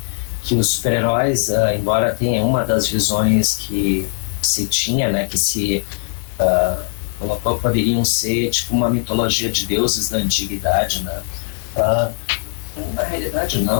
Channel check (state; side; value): silent; right; 62 dB below the other